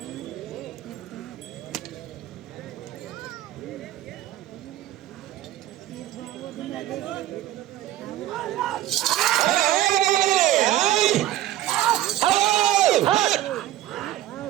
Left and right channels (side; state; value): left; quieter; 13.5 dB